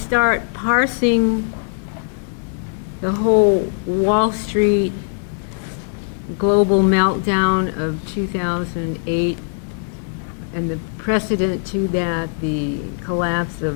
parsing the whole Wall Street global meltdown of 2008 and the precedent to that, the collapse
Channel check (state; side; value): silent; right; 58 dB below the other